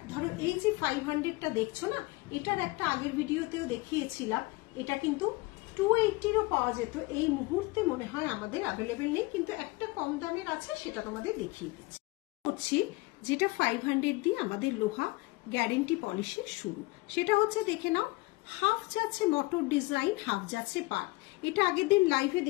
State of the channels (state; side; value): quieter; right; 23.1 dB